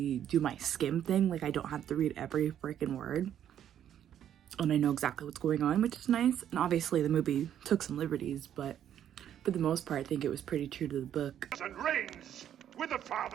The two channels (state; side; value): quieter; left; 10.2 dB